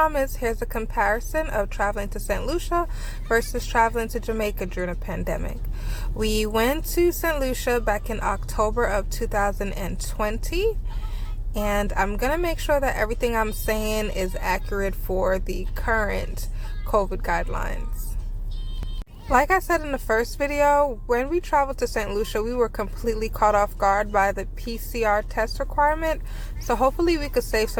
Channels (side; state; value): both; identical; correlation 1.00